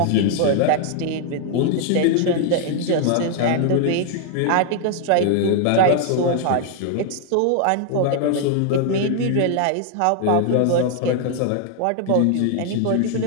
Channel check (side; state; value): both; different; correlation 0.00